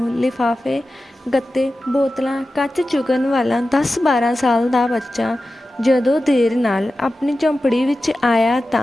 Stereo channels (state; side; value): normal; both; correlation 0.94